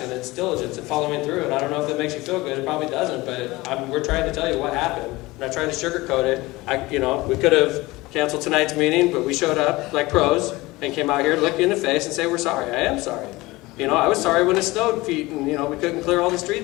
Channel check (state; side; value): quieter; right; 20.7 dB